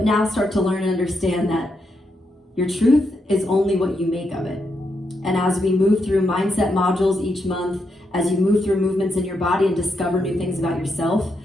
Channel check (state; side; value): normal; both; correlation 0.81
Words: now start to learn and understand that your truth is only what you make of it. And as we move through mindset modules each month, as you move through movements in your body and discover new things about yourself,